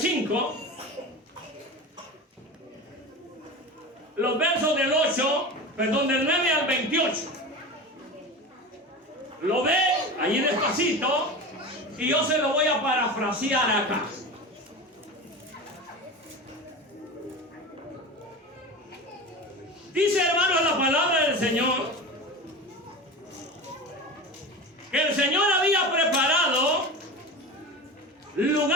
los versos del 9 al 28. Lo ve allí despacito y yo se lo voy a parafrasear acá. Dice, hermanos, la palabra del Señor que el Señor había preparado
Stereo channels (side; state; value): both; normal; correlation 0.29